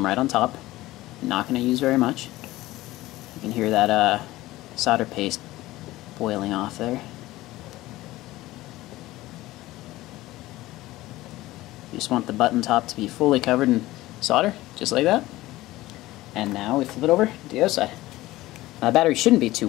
right on top. I'm not going to use very much. You can hear that solder paste boiling off there. You just want the button top to be fully covered in solder, just like that. And now we flip it over to the other side. Now the battery shouldn't be too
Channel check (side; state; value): right; quieter; 17.4 dB